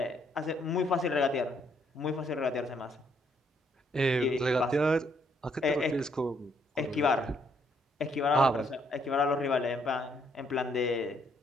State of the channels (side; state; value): both; normal; correlation 0.70